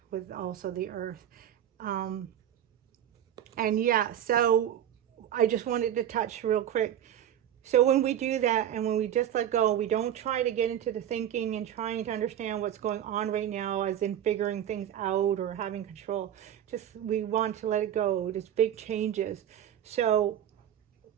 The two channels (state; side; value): quieter; left; 10.5 dB